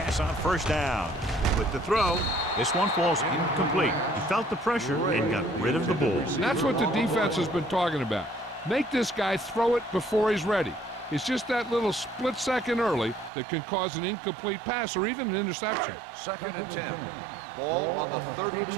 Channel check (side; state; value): left; drops out; at 13.3 s